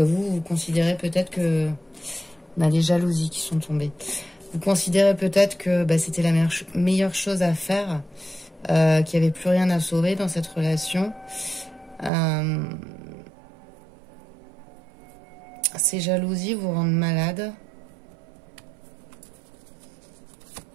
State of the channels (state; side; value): drops out; left; at 12.1 s